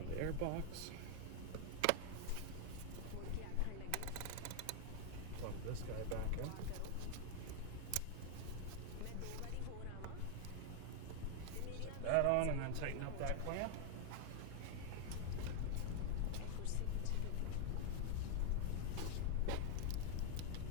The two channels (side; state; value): both; different; correlation 0.00